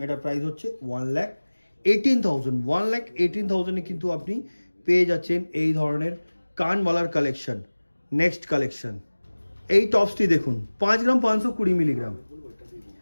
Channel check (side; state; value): both; inverted; correlation -1.00